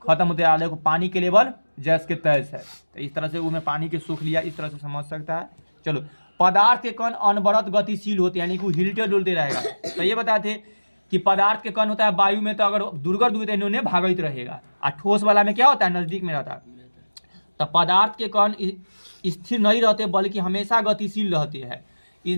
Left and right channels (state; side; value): inverted; both; correlation -1.00